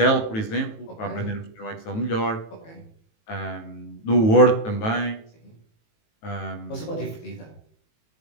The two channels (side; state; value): right; late; 18 ms